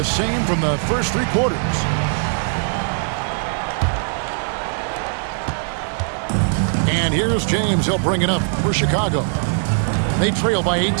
same from the first three quarters. And here's James. He'll bring it up for Chicago. They trail by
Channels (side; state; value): left; silent; 66 dB below the other